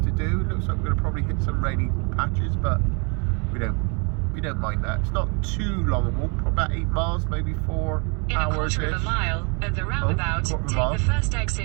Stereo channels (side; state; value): left; quieter; 34.1 dB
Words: to do. It looks like we're going to probably hit some rainy patches, but we don't mind that. It's not too long a walk, probably about 8 miles, maybe 4 hours. In a quarter of a mile at the roundabout, take the first